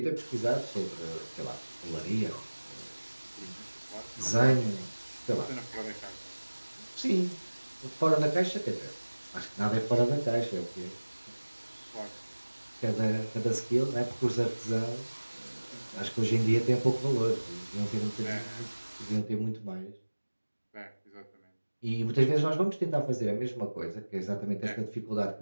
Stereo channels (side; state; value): both; inverted; correlation -1.00